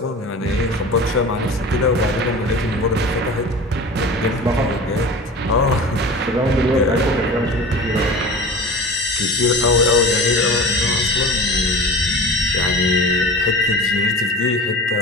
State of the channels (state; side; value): normal; both; correlation 0.36